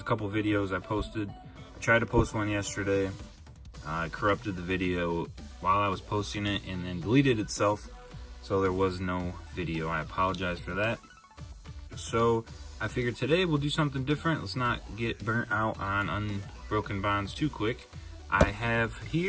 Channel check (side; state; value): both; identical; correlation 1.00